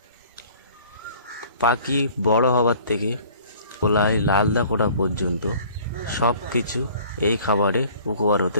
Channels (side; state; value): both; inverted; correlation -0.51